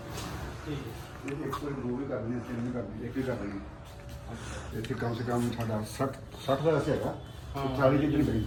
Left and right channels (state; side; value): identical; both; correlation 1.00